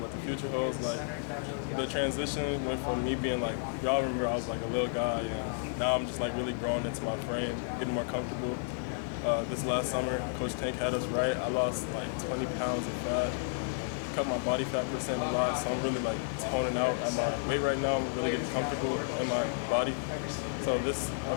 the future holds. Like the transition went from me being like, y'all remember I was like a little guy, and now I'm just like really growing into my frame, getting more comfortable. This last summer, Coach Tank had us right. I lost like 20 pounds of fat, cut my body fat percent a lot, so I'm really like toning out at my weight right now. I'm really getting comfortable in my body. So this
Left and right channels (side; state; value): right; silent; digital silence